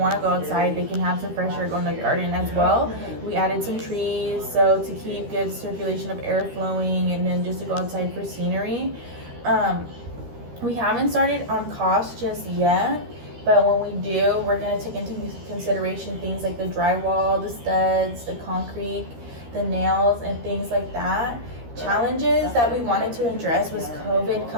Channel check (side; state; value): left; late; 13 ms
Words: to go outside, they can have some fresh air go in the garden as well. We added some trees, so to keep good circulation of air flowing, and then just to go outside for scenery. We haven't started on cost just yet, but when we do, we're going to take into consideration things like the drywall, the studs, the concrete, the nails, and things like that. Challenges that we wanted to address was COVID